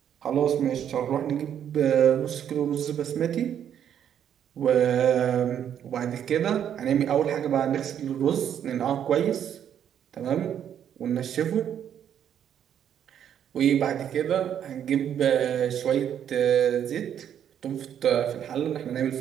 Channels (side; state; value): left; quieter; 9.4 dB